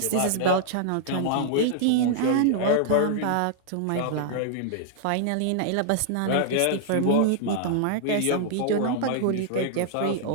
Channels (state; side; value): different; both; correlation -0.01